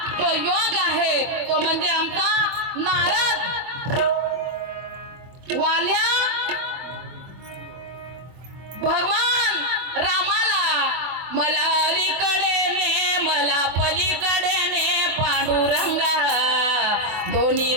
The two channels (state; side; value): late; left; 24 ms